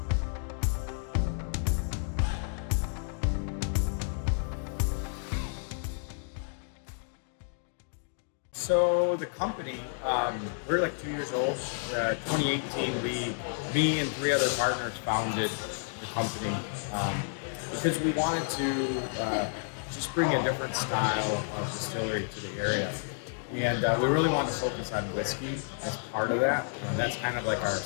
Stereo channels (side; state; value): right; silent; digital silence